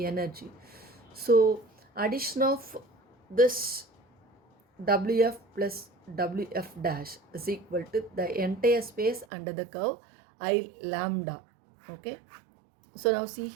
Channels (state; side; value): drops out; left; at 9.2 s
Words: So addition of this Wf plus Wf dash is equal to the entire space under the curve I lambda. Okay, so now see